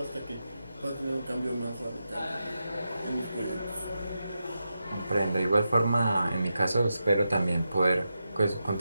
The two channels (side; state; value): both; inverted; correlation -0.89